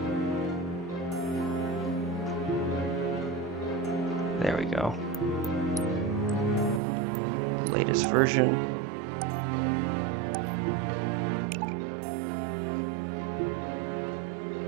There we go. Latest version.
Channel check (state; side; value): drops out; left; at 6.8 s